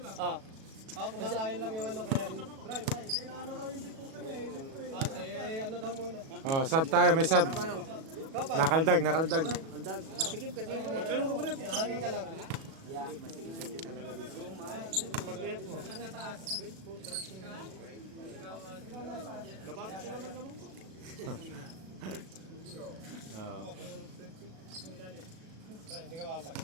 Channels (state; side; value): late; left; 37 ms